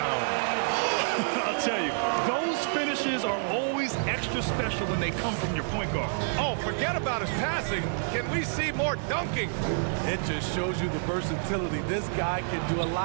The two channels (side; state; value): left; silent; digital silence